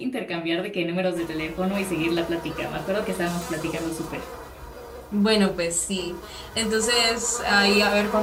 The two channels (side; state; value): both; identical; correlation 1.00